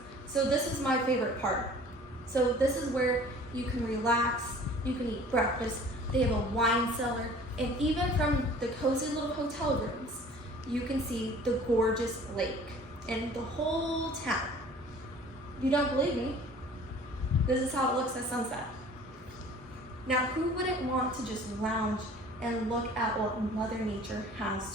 so this is my favorite part. So this is where you can relax, you can eat breakfast. They have a wine cellar, and even from the cozy little hotel rooms, you can see the gorgeous lake and the whole town. If you don't believe me, this is how it looks at sunset. Now, who wouldn't want to just lounge and look at what Mother Nature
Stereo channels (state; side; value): normal; both; correlation 0.48